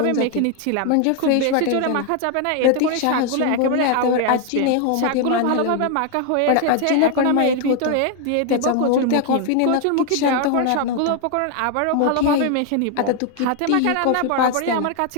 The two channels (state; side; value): different; both; correlation 0.01